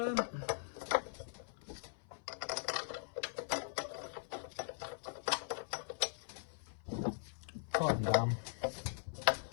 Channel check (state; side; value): silent; right; 51 dB below the other